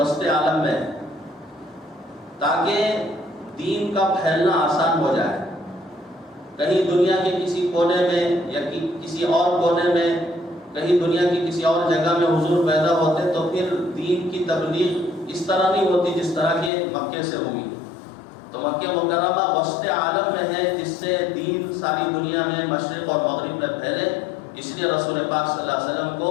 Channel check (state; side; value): drops out; right; at 16.7 s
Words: عالم میں، تاکہ دین کا پھیلنا آسان ہو جائے۔ کہیں دنیا کے کسی کونے میں یا کسی اور کونے میں، کہیں دنیا کی کسی اور جگہ میں حضور پیدا ہوتے تو پھر دین کی تبلیغ اس طرح نہیں ہوتی جس طرح کہ مکے سے ہوئی۔ تو مکہ مکرمہ وسط عالم میں ہے، جس سے دین ساری دنیا میں مشرق اور مغرب میں پھیلے۔ اس لیے رسول پاک صلی اللہ علیہ وسلم